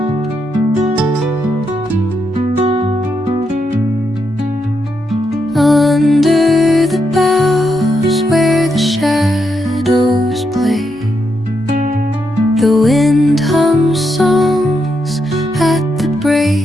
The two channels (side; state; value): both; normal; correlation 0.81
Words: Under the boughs where the shadows play, the wind hums songs at the